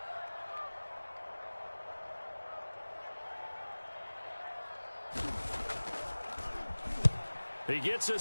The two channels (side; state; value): both; inverted; correlation -1.00